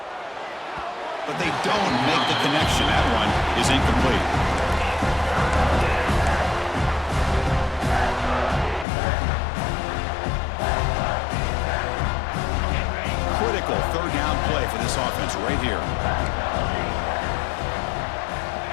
But they don't make the connection. That one is incomplete. Critical third down play for this offense right here.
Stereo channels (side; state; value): right; drops out; at 8.8 s